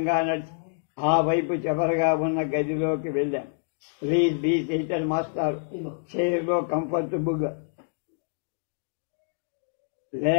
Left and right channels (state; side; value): silent; right; digital silence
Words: నడిచి ఆ వైపు చివరగా ఉన్న గదిలోకి వెళ్ళాం. ప్లీజ్ బీ సీటెడ్ మాస్టర్, చైర్లో కంఫర్టబుల్గా